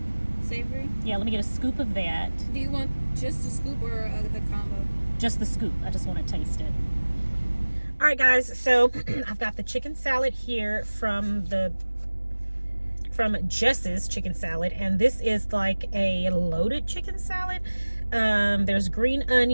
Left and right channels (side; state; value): both; inverted; correlation -1.00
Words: Savory? Yeah, let me get a scoop of that. Do you want just the scoop or the combo? Just the scoop. I just want to taste it. All right, guys. So I've got the chicken salad here from Jess's Chicken Salad, and this is like a loaded chicken salad. There's green